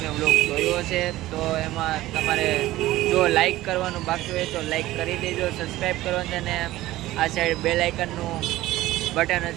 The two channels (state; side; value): quieter; left; 16.4 dB